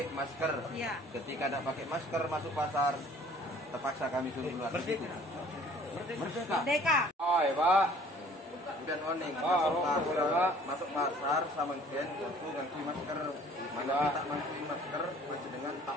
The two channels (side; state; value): both; normal; correlation 0.53